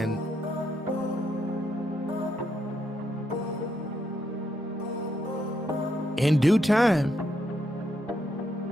in due time,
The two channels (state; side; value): normal; both; correlation 0.78